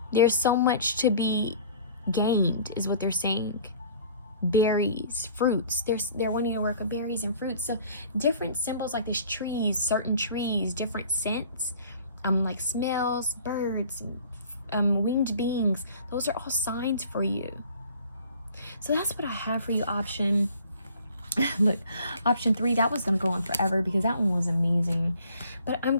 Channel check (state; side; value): inverted; both; correlation -0.51